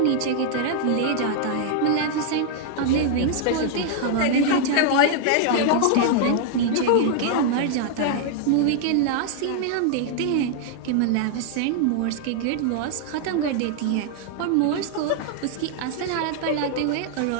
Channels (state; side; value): different; both; correlation -0.01